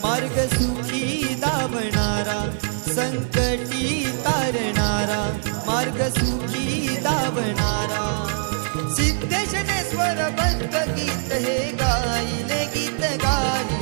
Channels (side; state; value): left; silent; digital silence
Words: मार्ग सुखी दावणारा संकटी तारणारा मार्ग सुखी दावणारा सिद्धेशनेश्वर बंद गीत हे गायले